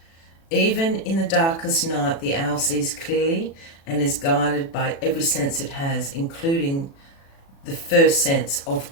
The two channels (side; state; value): right; late; 36 ms